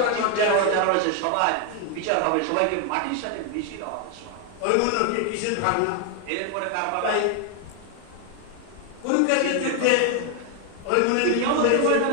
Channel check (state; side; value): different; both; correlation 0.01